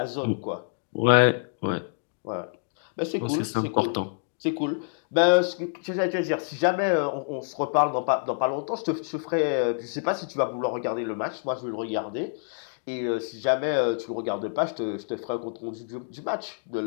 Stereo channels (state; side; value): silent; right; digital silence